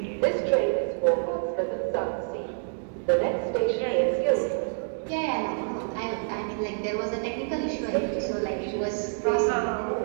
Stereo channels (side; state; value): left; silent; digital silence